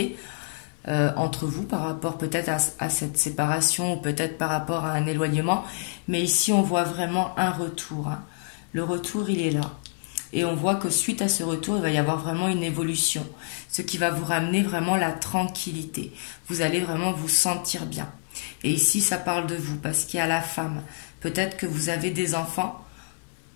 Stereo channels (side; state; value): right; silent; digital silence